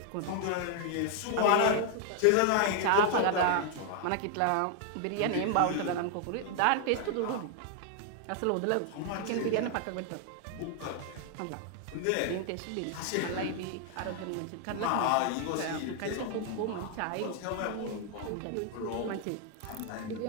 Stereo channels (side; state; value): both; different; correlation 0.00